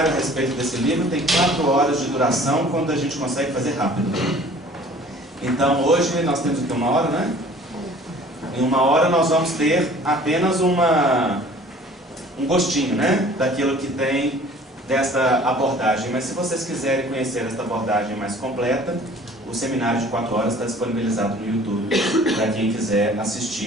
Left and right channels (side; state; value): both; normal; correlation 0.50